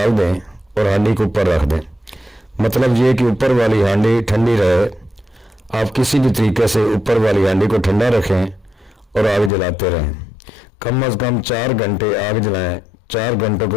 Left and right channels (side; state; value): right; drops out; at 9.5 s